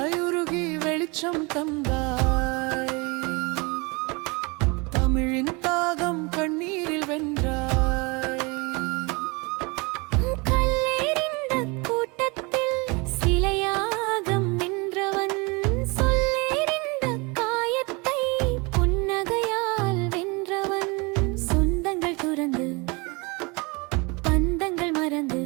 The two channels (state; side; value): quieter; left; 28.1 dB